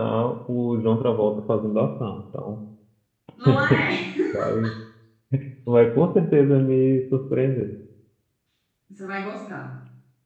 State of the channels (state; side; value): identical; both; correlation 1.00